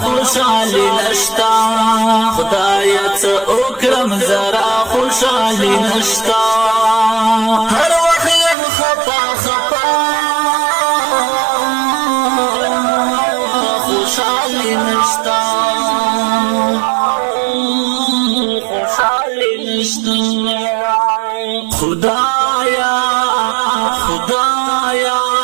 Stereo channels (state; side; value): drops out; left; at 8.6 s